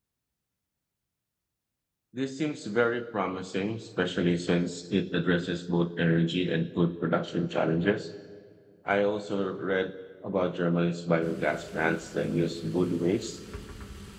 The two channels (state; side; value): identical; both; correlation 1.00